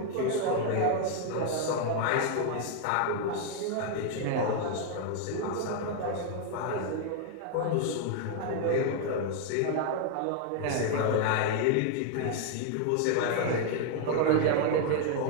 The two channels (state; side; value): different; both; correlation 0.00